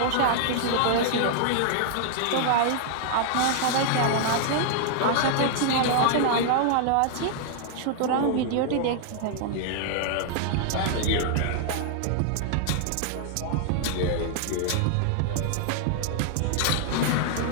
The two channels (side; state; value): both; different; correlation -0.01